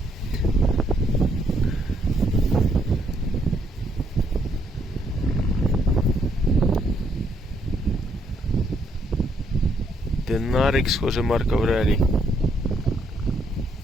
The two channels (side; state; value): both; normal; correlation 0.72